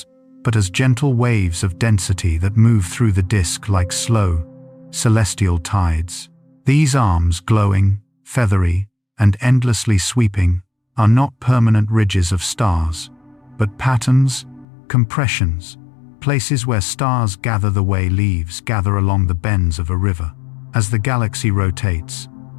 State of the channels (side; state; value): right; drops out; at 14.7 s